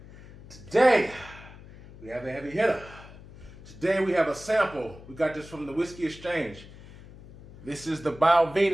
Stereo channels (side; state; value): left; noise; hum, 19 dB below the sound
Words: Today, we have a heavy hitter. Today we have a sample. We got this from the Whiskey Exchange. This is the